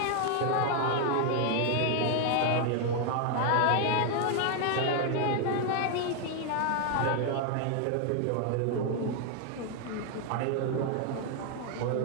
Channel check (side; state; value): both; different; correlation 0.00